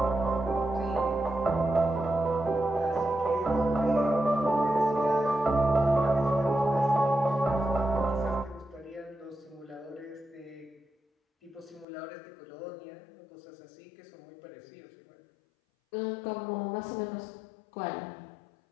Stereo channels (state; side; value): drops out; right; at 11.9 s